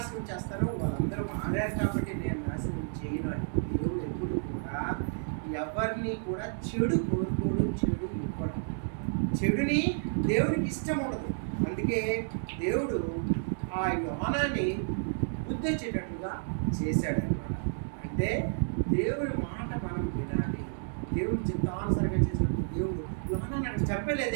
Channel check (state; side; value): silent; left; digital silence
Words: చేస్తాను, వాళ్ళందరూ మారారు కాబట్టి నేను నాశనం చేయను అని. దేవుడు ఎప్పుడు కూడా ఎవరిని కూడా చెడు కోరుకోడు, చెడు ఇవ్వడు. చెడుని దేవునికి ఇష్టం ఉండదు. అందుకే దేవుడు ఆ యోనాని బుద్ధి వచ్చేటట్లుగా చేశాడనమాట. అంటే దేవుని మాట మనం వినాలి. దేవుని చిత్తానుసరంగా చేసినప్పుడు దేవుడు యోనాని అక్కడ